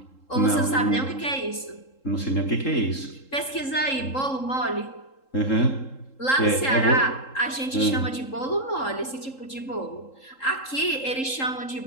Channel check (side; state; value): right; late; 3.7 ms